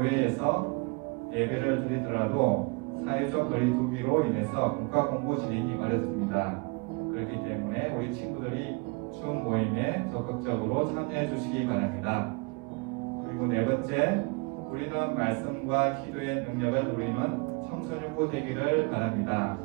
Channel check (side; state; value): left; quieter; 30.5 dB